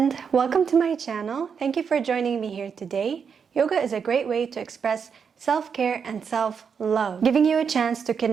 welcome to my channel. Thank you for joining me here today. Yoga is a great way to express self-care and self-love, giving you a chance to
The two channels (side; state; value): left; quieter; 6.5 dB